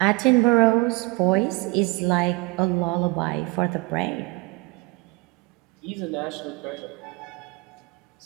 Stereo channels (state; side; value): quieter; left; 25.6 dB